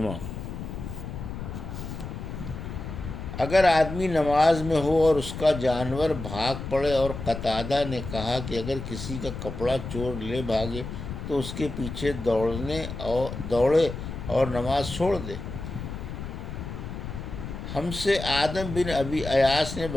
اگر آدمی نماز میں ہو اور اس کا جانور بھاگ پڑے، اور قتادہ نے کہا کہ اگر کسی کا کپڑا چور لے بھاگے تو اس کے پیچھے دوڑے اور نماز چھوڑ دے۔ ہم سے آدم بن ابی ایاس نے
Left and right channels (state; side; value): noise; left; rumble, 8 dB below the sound